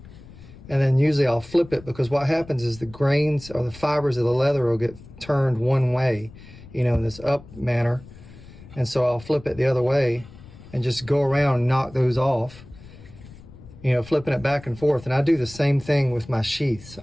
and then usually I'll flip it, because what happens is the grains or the fibers of the leather will get turned one way, you know, in this up manner. And so I'll flip it the other way and just go around and knock those off, you know, flipping it back and forth. And I do the same thing with my sheaths.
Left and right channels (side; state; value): left; noise; rumble, 19 dB below the sound